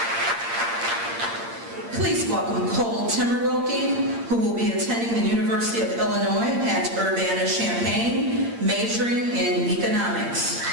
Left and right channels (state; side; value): late; left; 8.7 ms